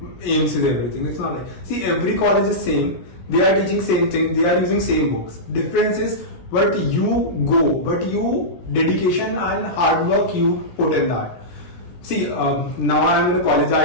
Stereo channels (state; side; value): late; right; 17 ms